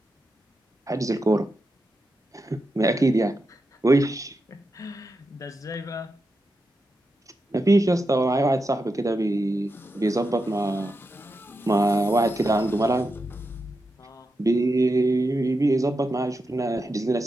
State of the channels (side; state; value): both; normal; correlation 0.88